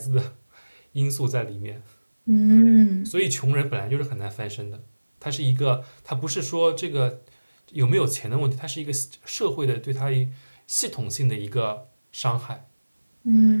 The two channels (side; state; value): both; inverted; correlation -1.00